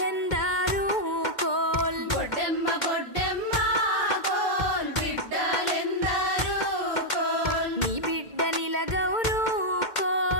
కోల్ గొడ్డెమ్మ గొడ్డెమ్మ కోల్ బిడ్డలెందరూ కోల్ నీ బిడ్డ నిలగౌరు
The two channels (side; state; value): right; late; 2.1 ms